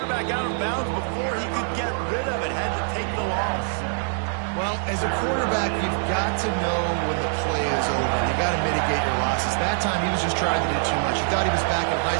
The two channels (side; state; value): left; silent; 56 dB below the other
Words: out of bounds before he could get rid of it, had to take the loss. Well, as a quarterback, you've got to know when the play is over. You got to mitigate your losses. That time, he was just trying to do too much. He thought he was back in